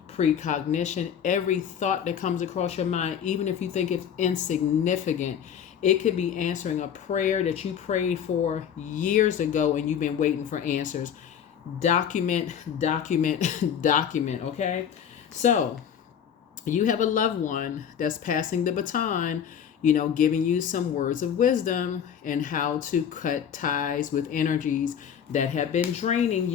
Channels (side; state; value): right; quieter; 8.5 dB